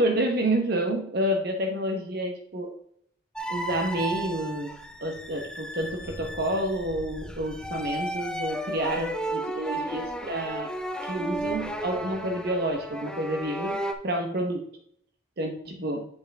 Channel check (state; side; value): normal; both; correlation 0.35